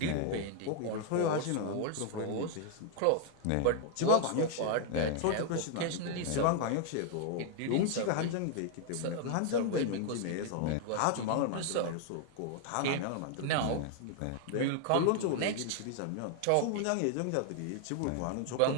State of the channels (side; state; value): both; different; correlation 0.00